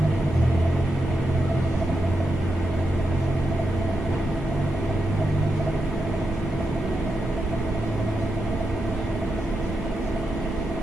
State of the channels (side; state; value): both; normal; correlation 0.86